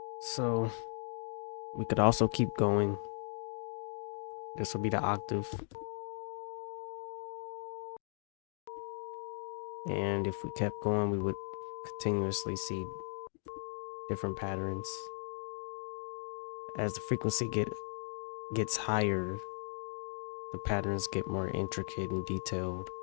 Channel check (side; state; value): right; silent; digital silence